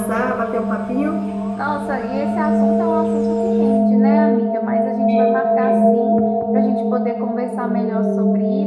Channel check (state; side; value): identical; both; correlation 1.00